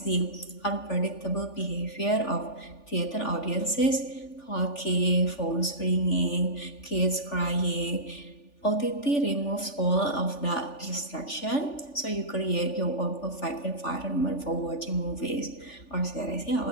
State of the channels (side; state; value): right; late; 3.4 ms